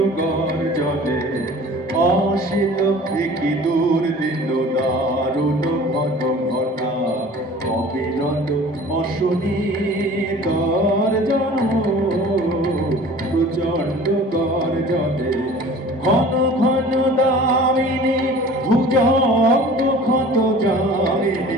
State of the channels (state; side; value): normal; both; correlation 0.44